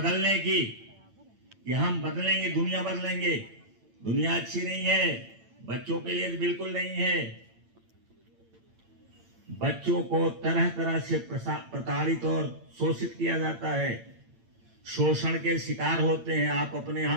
की, कि हम बदलेंगे, दुनिया बदलेंगे। दुनिया अच्छी नहीं है, बच्चों के लिए बिल्कुल नहीं है। बच्चों को तरह तरह से प्रताड़ित और शोषित किया जाता है, शोषण के शिकार होते हैं। आप अपने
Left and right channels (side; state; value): left; late; 8.8 ms